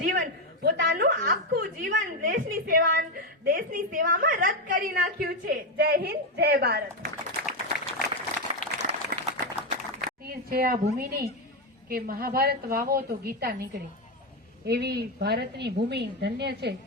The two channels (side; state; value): both; normal; correlation 0.08